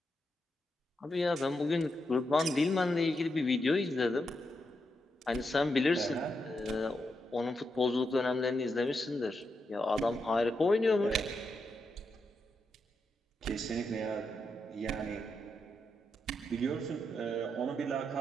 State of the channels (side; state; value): both; normal; correlation 0.84